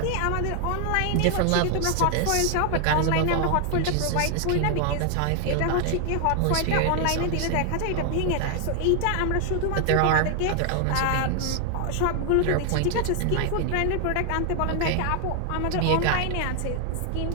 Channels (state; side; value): different; both; correlation 0.00